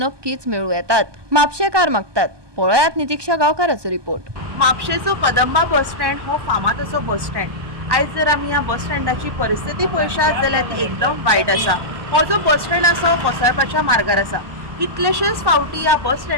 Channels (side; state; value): left; late; 1.2 ms